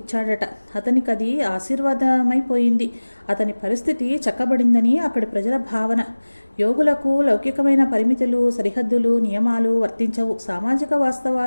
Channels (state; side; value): inverted; both; correlation -1.00